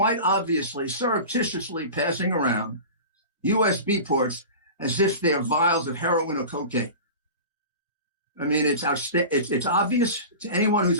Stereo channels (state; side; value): inverted; both; correlation -0.33